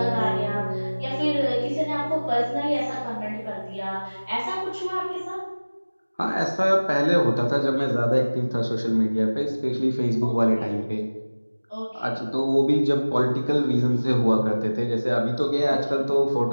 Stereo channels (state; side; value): inverted; both; correlation -1.00